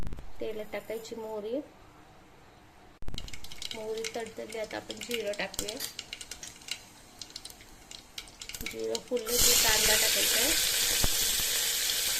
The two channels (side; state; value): both; identical; correlation 1.00